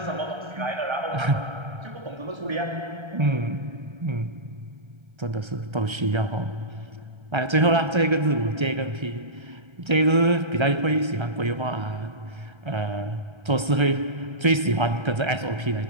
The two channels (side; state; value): left; late; 1.3 ms